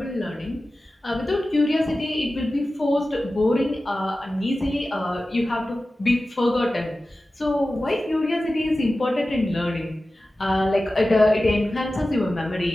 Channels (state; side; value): normal; both; correlation 0.95